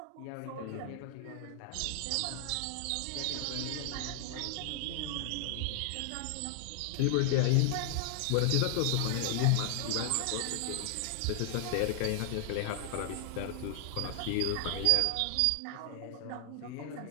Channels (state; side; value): different; both; correlation -0.01